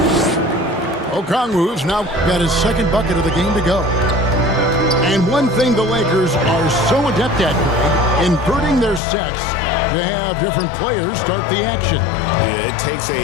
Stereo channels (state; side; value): drops out; right; at 9.0 s